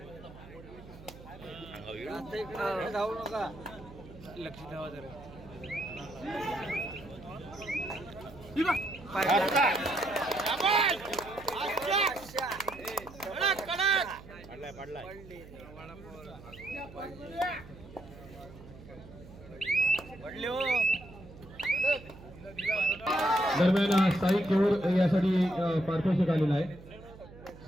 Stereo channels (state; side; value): noise; right; hum, 18 dB below the sound